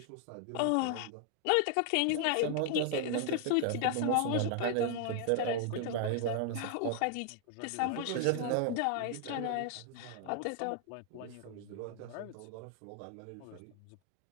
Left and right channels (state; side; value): different; both; correlation 0.00